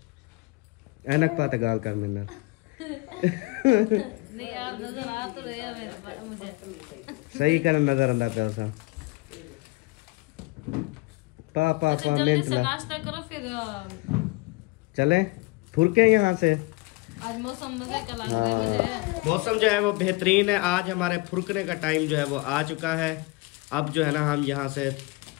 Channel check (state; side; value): quieter; right; 23.9 dB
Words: ऐनक पा तो गाल कर मेरा। नहीं आप नजर आ तो रहे हो मुझे। सही कर नजर अंदर पे उसा पा पा पा जल्दी मिनट से ला नाश्ता करो फिर चले फुरके यहाँ से। आज मौसम मजे का लग रहा है मुझे। मौसम जो है वो बेहतरीन है। आज हमारे फुरकने का टाइम जो है वो आ चुका है। अब जो है ना हम यहाँ से